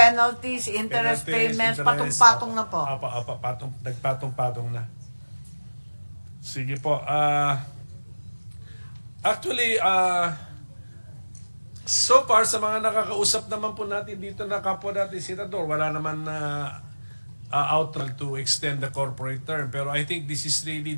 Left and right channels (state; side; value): inverted; both; correlation -1.00